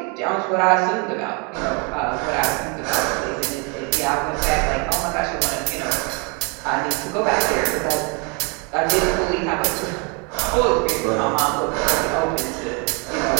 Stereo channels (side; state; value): left; quieter; 33.2 dB